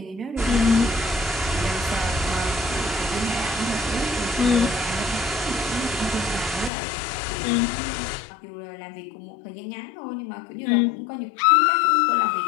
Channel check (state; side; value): drops out; right; at 6.7 s